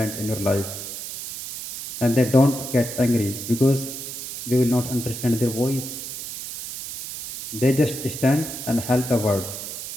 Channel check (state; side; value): noise; right; hiss, 8 dB below the sound